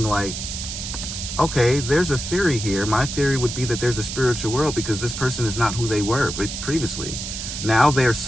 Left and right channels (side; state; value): right; noise; hiss, 6 dB below the sound